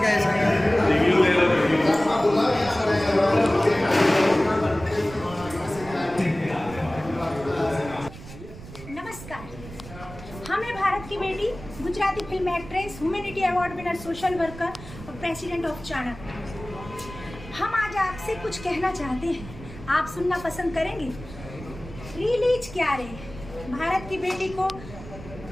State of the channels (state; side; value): noise; right; rumble, 15 dB below the sound